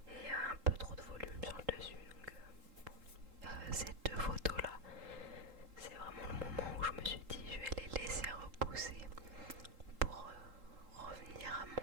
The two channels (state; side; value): late; left; 3.8 ms